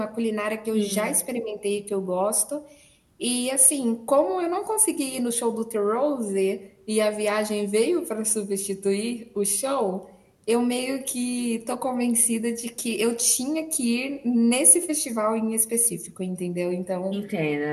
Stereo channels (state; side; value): identical; both; correlation 1.00